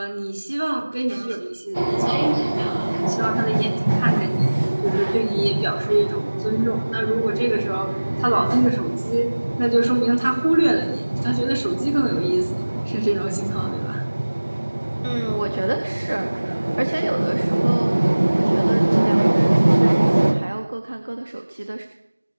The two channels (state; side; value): inverted; both; correlation -1.00